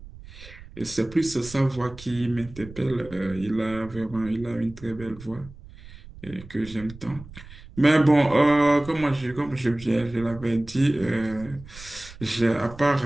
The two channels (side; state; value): right; noise; rumble, 18 dB below the sound